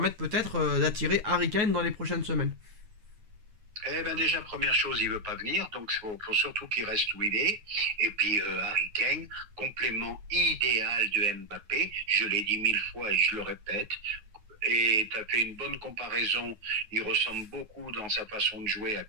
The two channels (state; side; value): late; left; 9.4 ms